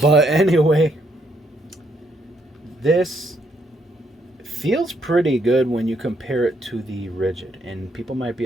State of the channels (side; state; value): both; normal; correlation 0.73